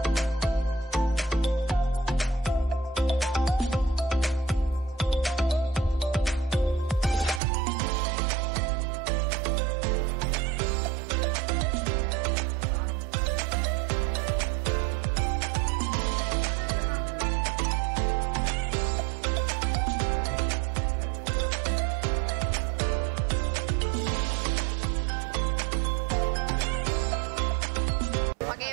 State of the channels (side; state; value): left; drops out; at 7.4 s